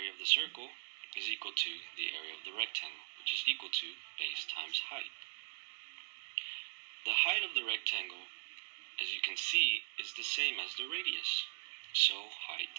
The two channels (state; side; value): silent; left; 51 dB below the other